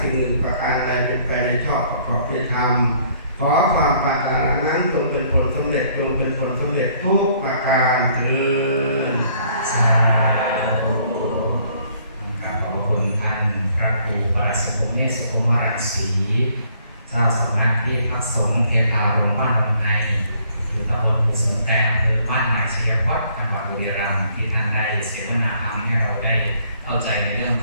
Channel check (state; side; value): inverted; both; correlation -0.63